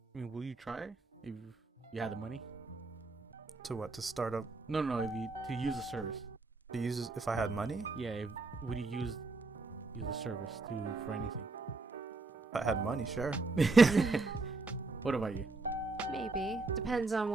I mean, will you try if you had the money? To what? To start up? No, if you to use the service. To use if I had money? Yeah, would you use the service for anything? If I had money, sure. What about you? Maybe. Depends on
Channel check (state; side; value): quieter; left; 3.6 dB